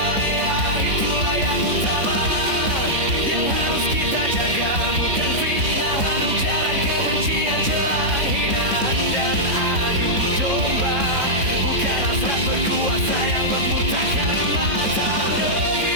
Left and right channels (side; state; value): left; late; 3.8 ms